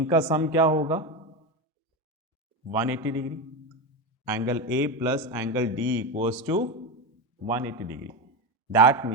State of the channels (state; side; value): normal; both; correlation 0.16